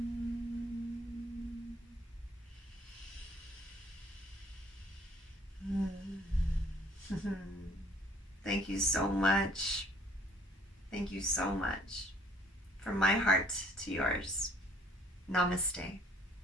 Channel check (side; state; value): both; normal; correlation 0.59